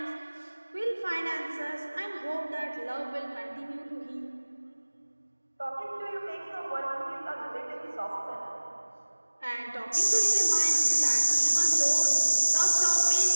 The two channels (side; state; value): both; inverted; correlation -1.00